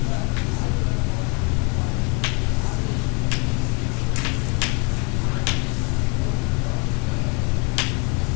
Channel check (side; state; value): right; quieter; 33.5 dB